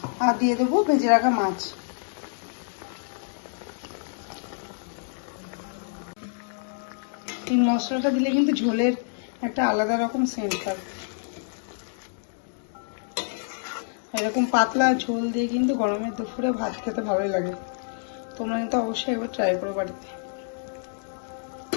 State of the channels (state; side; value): silent; right; digital silence